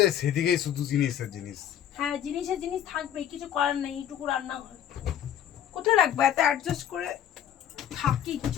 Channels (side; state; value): right; quieter; 10.1 dB